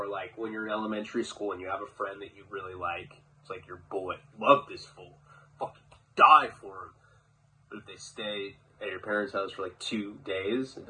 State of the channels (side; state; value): both; identical; correlation 1.00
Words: like, when you're in elementary school and you have a friend that you really like, it's like your boy, love this fool, fucking die for him. But if they stay at your parents' house for, like, 2 days, if